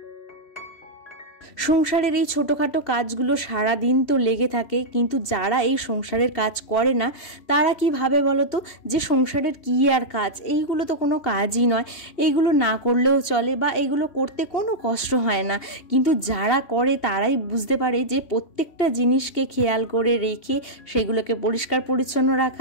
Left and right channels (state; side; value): late; right; 2.8 ms